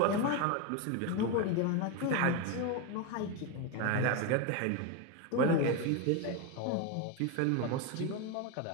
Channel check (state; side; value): different; both; correlation 0.03